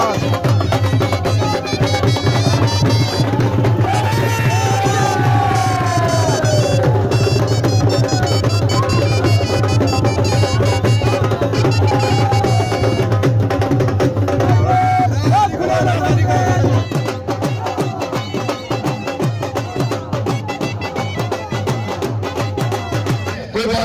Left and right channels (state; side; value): identical; both; correlation 1.00